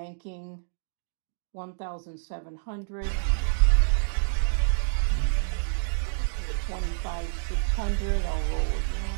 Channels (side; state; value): left; silent; digital silence